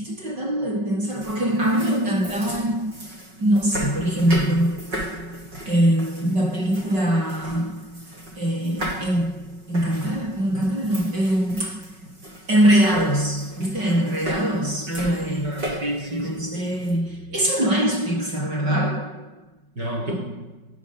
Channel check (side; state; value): left; late; 5.4 ms